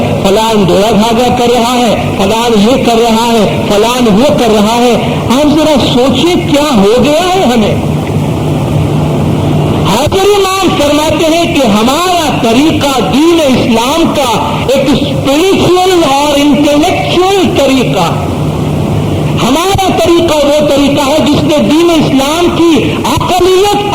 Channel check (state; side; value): identical; both; correlation 1.00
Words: فلان ڈورا دھاگا کر رہا ہے، فلان یہ کر رہا ہے، فلان وہ کر رہا ہے. آپ ذرا سوچیں کیا ہو گیا ہے ہمیں. حاضر امام فرماتے ہیں کہ ہمارا طریقہ دین اسلام کا ایک اسپرچل اور انٹلیکچوئل طریقہ. ہمارا طریقہ وہ طریقہ ہے جس نے دین اسلام کی عقلیت